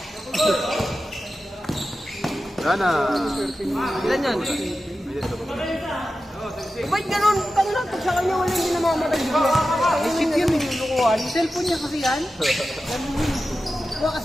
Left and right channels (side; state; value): both; normal; correlation 0.93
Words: Wala na. Ilan yan? Ba't ganun? Tangin lang, pag sa kanya wala hindi namamatay. Isip yun yung lukuhan. Cellphone niya kasi yan. Huwag ka